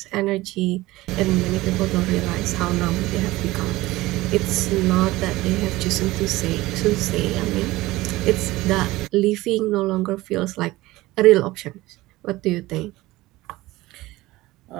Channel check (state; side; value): quieter; left; 18.7 dB